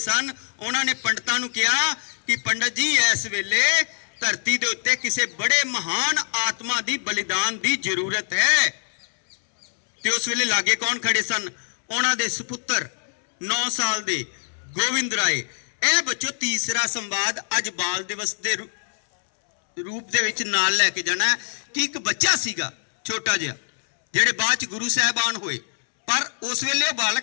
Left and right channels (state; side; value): silent; right; 63 dB below the other